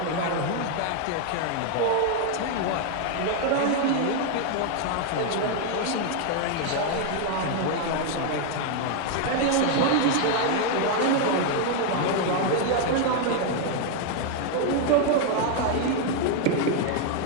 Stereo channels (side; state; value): both; different; correlation 0.01